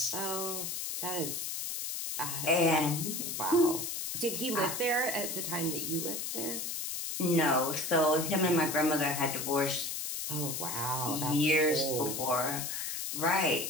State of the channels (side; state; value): left; noise; hiss, 4 dB below the sound